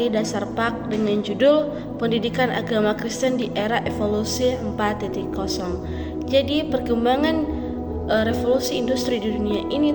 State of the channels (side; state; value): both; identical; correlation 1.00